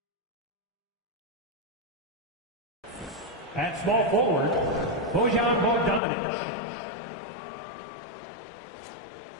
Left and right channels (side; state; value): right; drops out; at 6.0 s